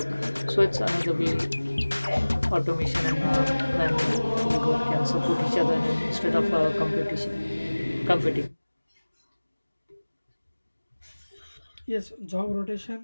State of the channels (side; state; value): both; inverted; correlation -1.00